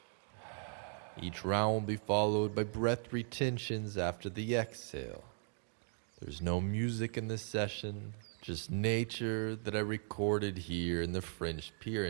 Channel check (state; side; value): silent; left; 53 dB below the other